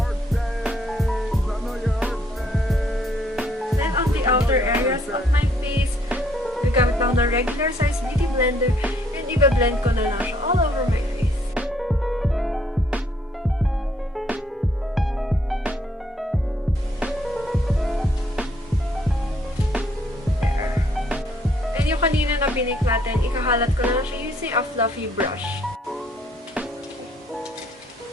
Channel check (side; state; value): both; normal; correlation 0.67